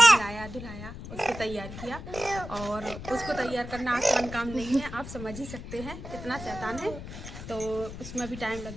धुलाया, उसको तैयार किया। और उसको तैयार करना आसान काम नहीं है, आप समझ ही सकते हैं कितना शैतान है। तो उसमें भी टाइम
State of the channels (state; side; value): noise; left; rumble, 11 dB below the sound